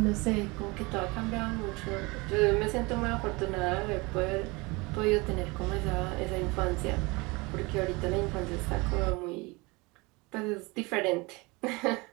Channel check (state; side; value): quieter; left; 25.3 dB